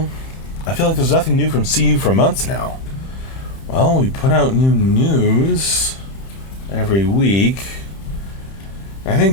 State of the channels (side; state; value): right; late; 31 ms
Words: I feel like there's nothing new from CU for months now. Well, we put out new news every week. I